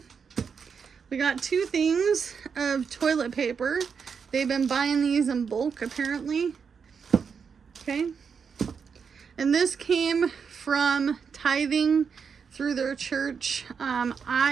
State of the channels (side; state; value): left; quieter; 6.2 dB